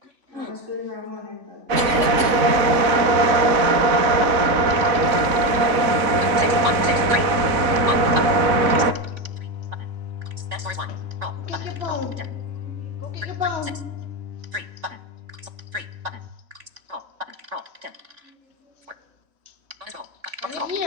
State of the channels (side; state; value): left; late; 3.5 ms